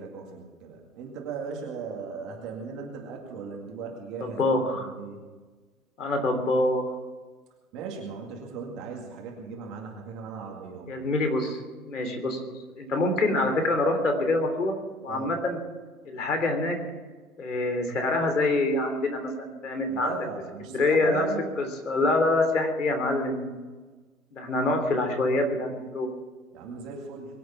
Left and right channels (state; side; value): normal; both; correlation 0.55